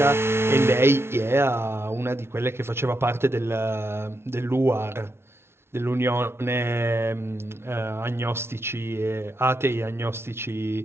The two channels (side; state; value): left; late; 0.12 ms